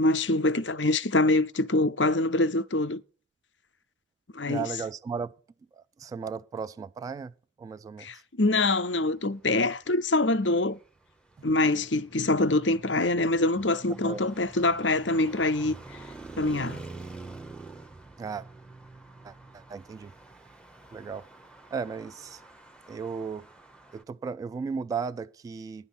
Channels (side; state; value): both; normal; correlation 0.22